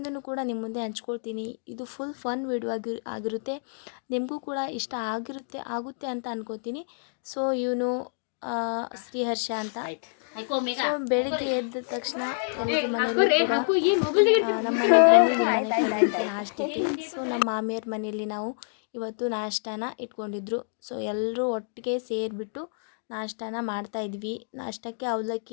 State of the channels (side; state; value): right; silent; digital silence